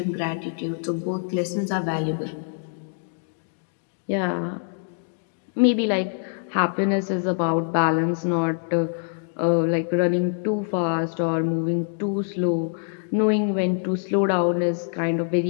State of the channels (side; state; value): right; silent; digital silence